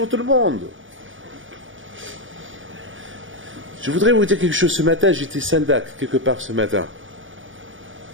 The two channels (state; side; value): late; left; 0.57 ms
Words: tout le monde. Je voudrais vous dire quelque chose. Ce matin, j'étais Sandak, quelque part ce matin.